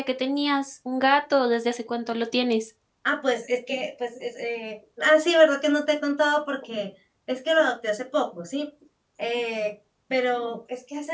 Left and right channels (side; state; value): both; identical; correlation 1.00